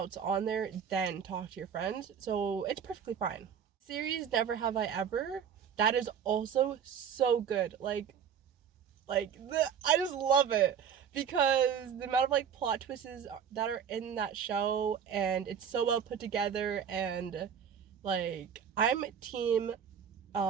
on there then talk to your friends. So it's perfectly fine. Series Never Have I Ever. That is also so good. I just love it because the amount of like plot twists that are in that show, and it's so well put together, and like I'm team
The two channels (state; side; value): quieter; left; 7.8 dB